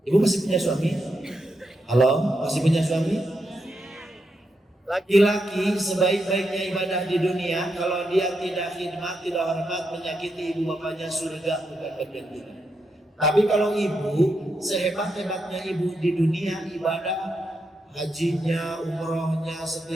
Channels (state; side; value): normal; both; correlation 0.83